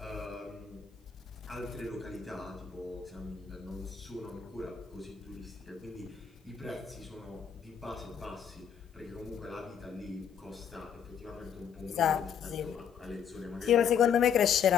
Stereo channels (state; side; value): quieter; right; 7.7 dB